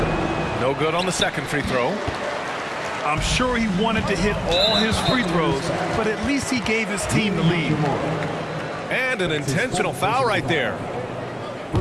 No good on the second free throw. I'm sure he wanted to hit all his free throws, but at least he gave his team the lead. And an intentional foul right there.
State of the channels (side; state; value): both; identical; correlation 1.00